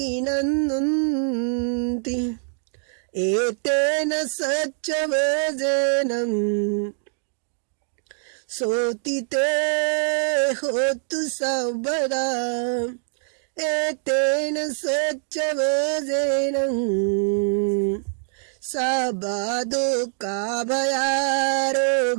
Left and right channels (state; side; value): silent; left; digital silence